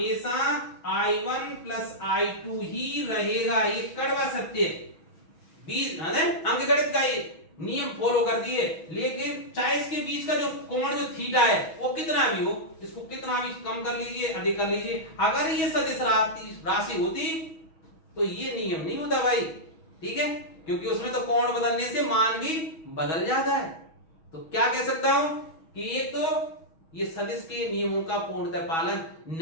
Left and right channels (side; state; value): right; late; 6.2 ms